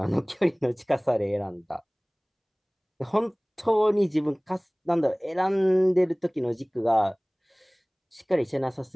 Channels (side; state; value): both; identical; correlation 1.00